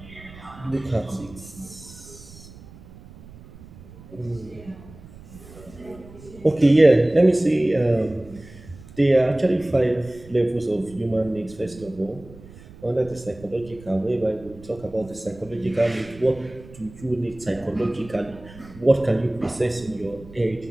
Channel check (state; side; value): noise; right; rumble, 20 dB below the sound